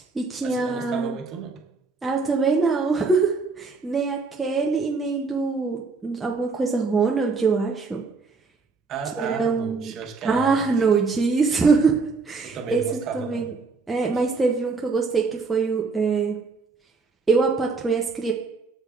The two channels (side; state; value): left; quieter; 4.4 dB